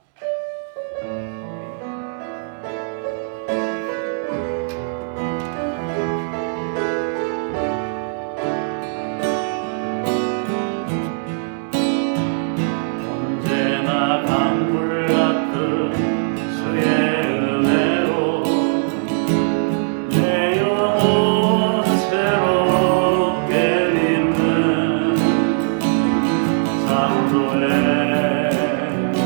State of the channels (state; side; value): silent; left; digital silence